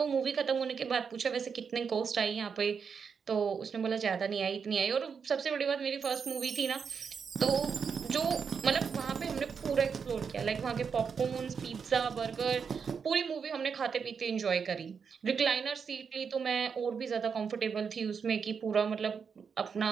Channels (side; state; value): left; quieter; 6.2 dB